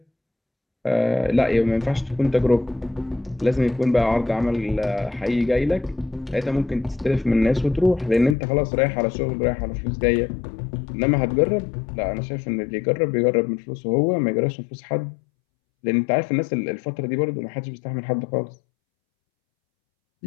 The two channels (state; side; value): drops out; right; at 8.3 s